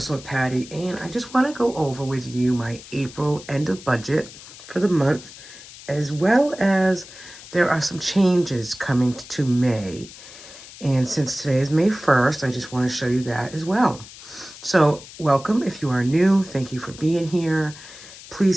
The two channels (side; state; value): left; noise; hiss, 17 dB below the sound